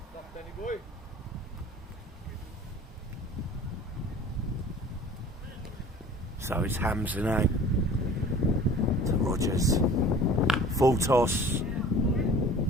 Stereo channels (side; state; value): both; normal; correlation 0.45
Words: So it's Hamza now to Rogers. Full toss.